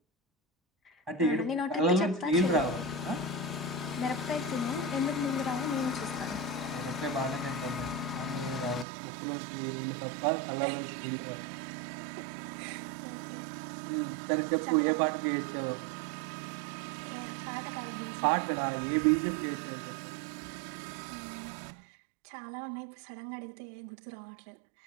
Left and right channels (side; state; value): left; drops out; at 8.8 s